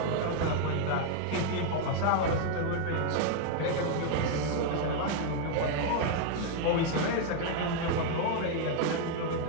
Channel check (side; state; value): both; different; correlation 0.00